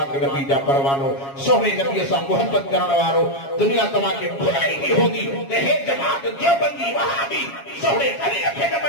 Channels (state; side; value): late; right; 7.3 ms